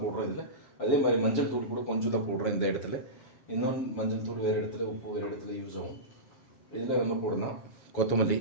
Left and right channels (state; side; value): late; right; 7.1 ms